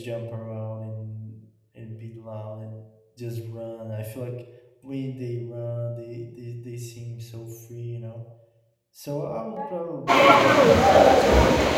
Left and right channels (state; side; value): identical; both; correlation 1.00